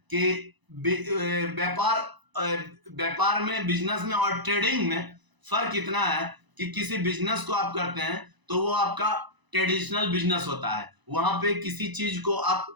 कि व्यापार में, बिजनेस में और ट्रेडिंग में फर्क इतना है कि किसी बिजनेस को आप करते हैं तो वो आपका ट्रेडिशनल बिजनेस होता है। वहां पे किसी चीज को आप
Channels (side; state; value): left; late; 1.0 ms